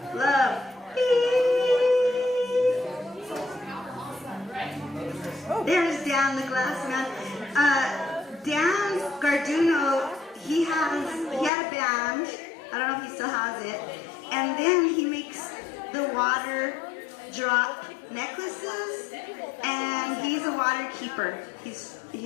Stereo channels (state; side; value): drops out; right; at 11.5 s